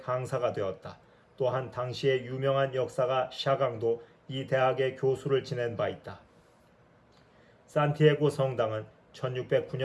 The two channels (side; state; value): both; identical; correlation 1.00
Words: 되었다. 또한 당시의 유명한 역사가 샤강도 이 대학의 교수를 지낸 바 있다. 산티아고 성당은